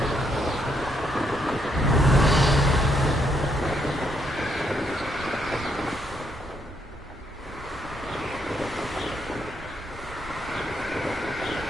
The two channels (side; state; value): both; normal; correlation 0.75